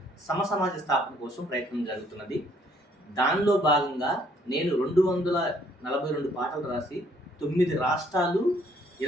సమసమాజ స్థాపన కోసం ప్రయత్నం జరుగుతున్నది. దానిలో భాగంగా నేను 242 పాటలు రాసి 9 రాష్ట్రాలు,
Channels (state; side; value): normal; both; correlation 0.64